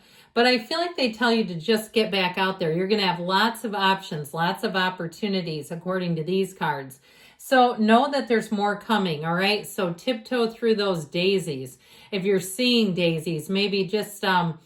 But I feel like they tell you to just get back out there. You're going to have lots of options, lots of opportunities, according to these cards. So know that there's more coming, all right? So tiptoe through those daisies. If you're seeing daisies, maybe just,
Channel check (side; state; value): both; identical; correlation 1.00